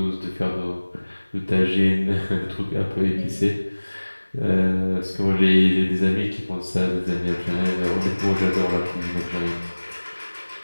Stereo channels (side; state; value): both; inverted; correlation -1.00